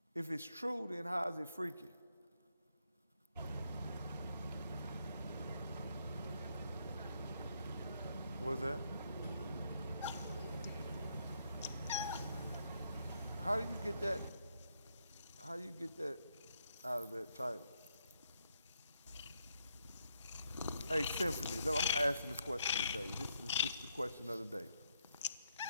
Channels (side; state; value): both; inverted; correlation -0.76